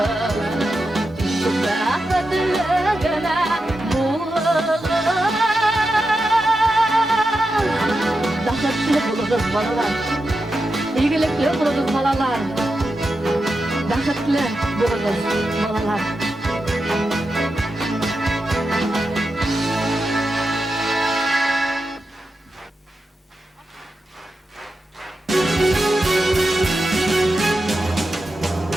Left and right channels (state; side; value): normal; both; correlation 0.89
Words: Bəxtlilərine bulunur. Bəxtli bulunuz balalar, İyilikli bulunuz balalar, Bəxtli bulunuz balalar.